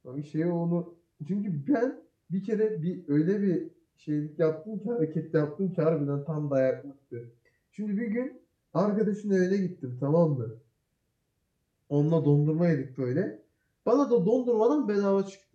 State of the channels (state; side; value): identical; both; correlation 1.00